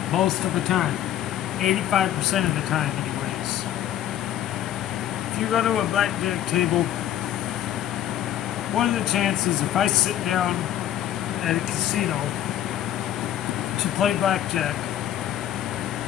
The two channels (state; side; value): quieter; right; 11.7 dB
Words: most of the time. 85% of the time, anyways. If you go to a blackjack table, what are the chances if I sit down at a casino to play blackjack,